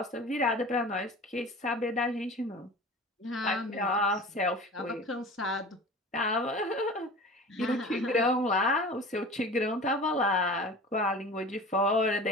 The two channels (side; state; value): both; normal; correlation 0.38